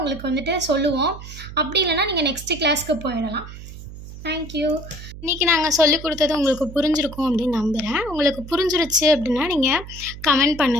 வந்துட்டு சொல்லுவோம். அப்படி இல்லைனா நீங்கள் நெக்ஸ்ட்டு கிளாஸ்க்கு போயிடலாம். தேங்க்யூ. இன்றைக்கி நாங்கள் சொல்லிக் கொடுத்தது உங்களுக்கு புரிஞ்சிருக்கும் அப்படின்னு நம்புகிறேன். உங்களுக்கு புரிஞ்சிருச்சு அப்படின்னா நீங்கள் கமெண்ட்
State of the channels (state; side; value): noise; right; hum, 13 dB below the sound